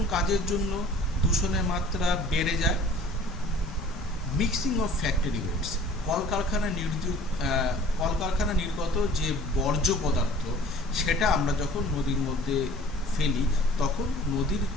কাজের জন্য দূষণের মাত্রা বেড়ে যায়? মিক্সিং অফ ফ্যাক্টরি ওয়েস্ট, কলকারখানা নির্গত যে বর্জ্য পদার্থ সেটা আমরা যখন নদীর মধ্যে ফেলি তখন নদীর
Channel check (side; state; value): both; normal; correlation 0.48